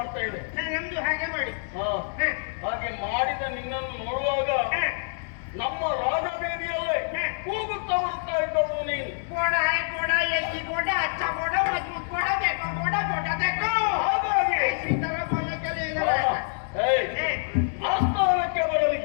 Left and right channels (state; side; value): silent; right; 61 dB below the other